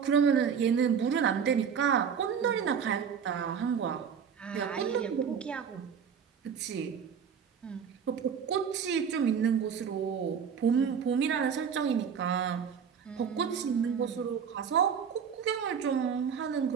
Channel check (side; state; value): left; quieter; 7.2 dB